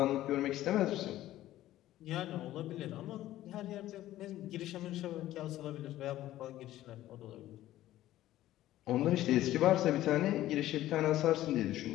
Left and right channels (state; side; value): quieter; right; 14.4 dB